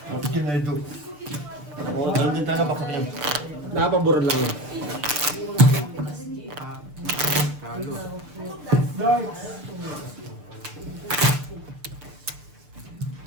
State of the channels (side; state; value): left; late; 6.8 ms